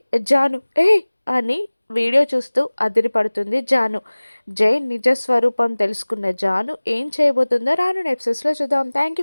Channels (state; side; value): inverted; both; correlation -1.00